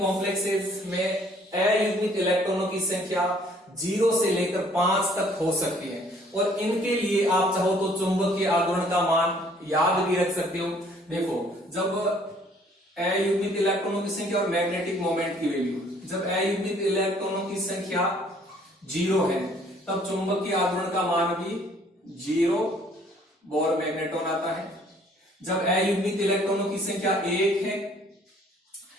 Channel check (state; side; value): normal; both; correlation 0.60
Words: में अयुग्मित इलेक्ट्रॉनों की संख्या 0 से लेकर 5 तक हो सकती है और इनके लिए आप चाहो तो चुंबकीय आघूर्ण का मान याद भी रख सकते हो। देखो जब अयुग्मित इलेक्ट्रॉनों की संख्या और मैग्नेटिक मोमेंट की वैल्यू, जब अयुग्मित इलेक्ट्रॉनों की संख्या 0 है तब चुंबकीय आघूर्ण का मान भी 0 बोर मैग्नेटॉन आता है। जब अयुग्मित इलेक्ट्रॉनों की संख्या 1 है